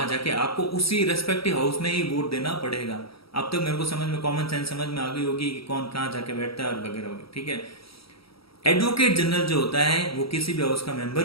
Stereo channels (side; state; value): right; late; 0.76 ms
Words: जाके आपको उसी रेस्पेक्टिव हाउस में ही वोट देना पड़ेगा। अब तक मेरे को समझ में, कॉमन सेंस समझ में आ गई होगी कि कौन कहाँ जाके बैठता है और वगैरह वगैरह, ठीक है। एडवोकेट जनरल जो होता है वो किसी भी हाउस का